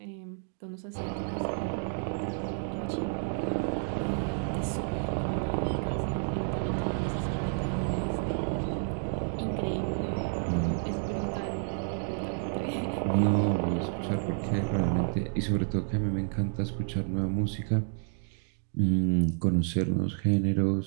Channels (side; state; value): left; silent; 55 dB below the other